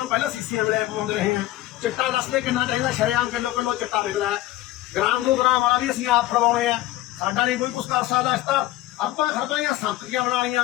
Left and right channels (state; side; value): quieter; right; 15.9 dB